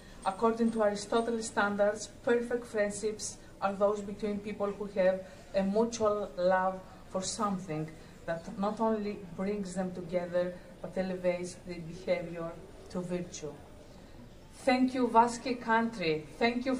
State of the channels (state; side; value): identical; both; correlation 1.00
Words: According to Aristotle's standards, perfect friendships are those between people who have a mutual love for something that not only brings them together, but elevates their behavior to virtue. Thank you, Vasque country. Thank you